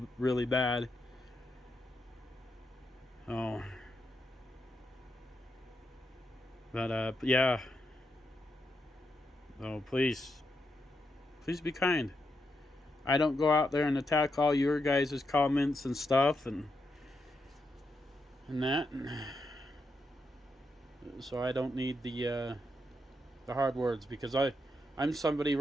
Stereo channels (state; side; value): normal; both; correlation 0.83